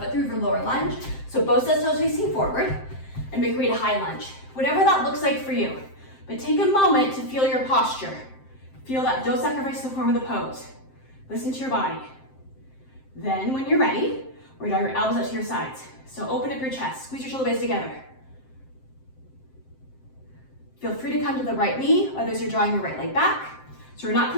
foot through for lower lunge. So both sets toes facing forward. And make your way to high lunge. Whatever that looks like for you. But take a moment to feel your posture. Feel that, don't sacrifice the form of the pose. Listen to your body. Then when you're ready, we're gonna draw your elbows out to your sides. So open up your chest, squeeze your shoulder blades together. Feel free to come to the right knee, others are drawing your right leg back. So we're not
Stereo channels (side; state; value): right; late; 7.6 ms